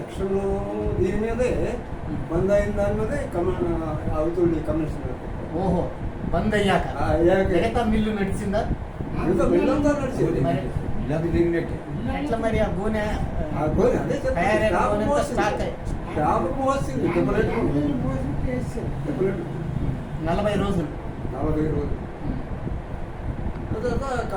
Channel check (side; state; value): both; identical; correlation 1.00